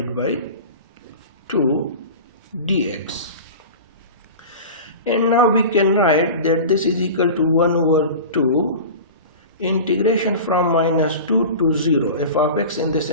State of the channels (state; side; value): inverted; both; correlation -0.33